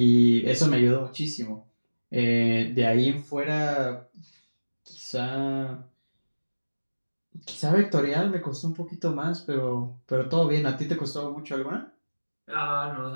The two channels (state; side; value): inverted; both; correlation -1.00